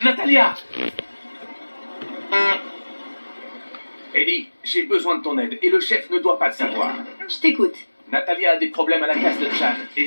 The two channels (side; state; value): both; inverted; correlation -1.00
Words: Natalia! Ellie, j'ai besoin de ton aide et le chef ne doit pas le savoir. Je t'écoute. Natalia a des problèmes à la casse de Chan